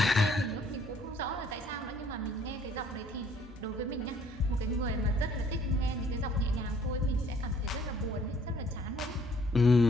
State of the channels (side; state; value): both; normal; correlation 0.61